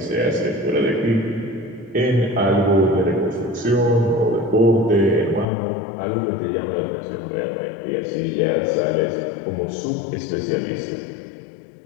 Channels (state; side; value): drops out; right; at 5.5 s